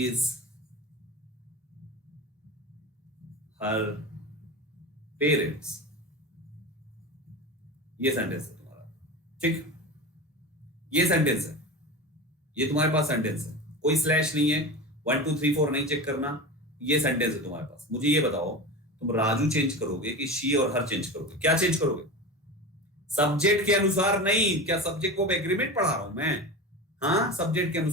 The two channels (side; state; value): both; normal; correlation 0.27